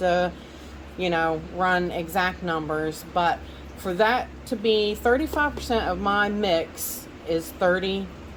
run exact numbers. But for that to be 35% of my mix is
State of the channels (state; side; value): identical; both; correlation 1.00